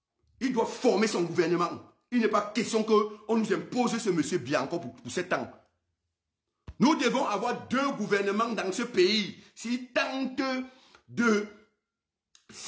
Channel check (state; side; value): identical; both; correlation 1.00